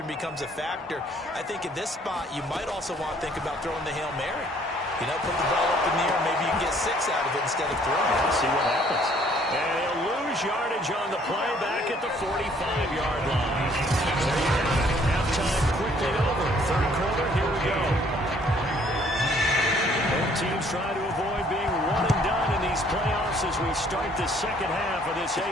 becomes a factor. I think at this spot, you might also want to think about throwing the Hail Mary. You know, put the ball up in the air, maybe you can get 6 out of it instead of 3. Let's see what happens. And he'll lose yardage on the play back at the 45-yard line. Halftime quickly over. Third quarter, here we go. Both teams try to avoid being one and done in these playoffs as we start the second half of this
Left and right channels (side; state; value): both; normal; correlation 0.61